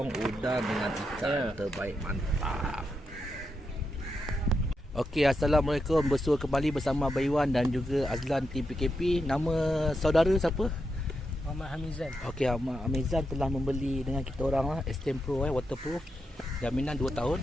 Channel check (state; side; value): normal; both; correlation 0.85